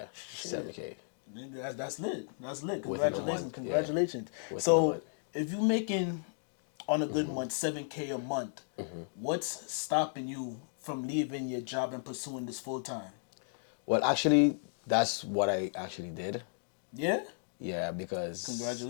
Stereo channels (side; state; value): right; silent; digital silence